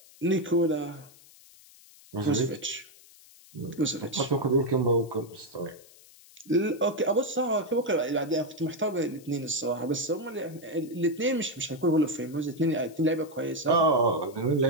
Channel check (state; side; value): noise; left; hiss, 24 dB below the sound